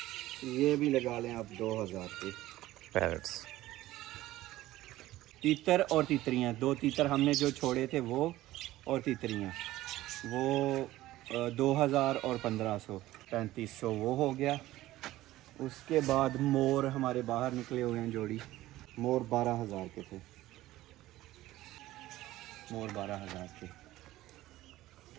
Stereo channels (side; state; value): left; quieter; 16.0 dB